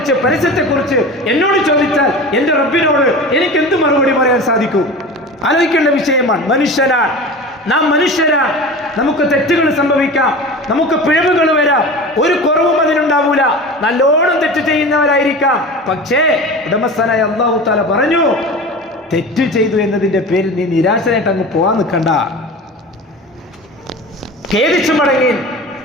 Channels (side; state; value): both; normal; correlation 0.33